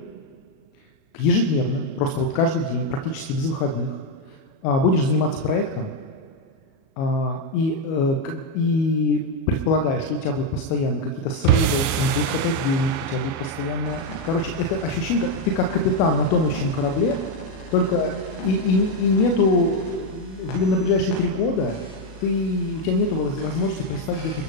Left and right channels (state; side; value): late; right; 37 ms